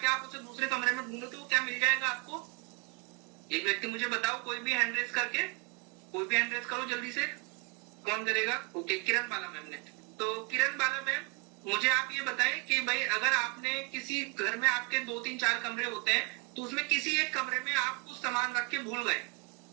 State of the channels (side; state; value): left; quieter; 31.3 dB